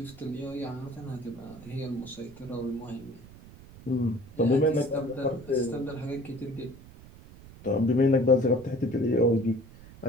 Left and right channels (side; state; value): right; noise; rumble, 19 dB below the sound